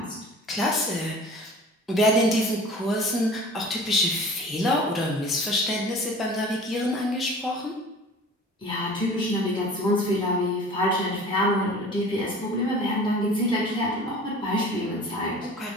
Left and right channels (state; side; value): normal; both; correlation 0.43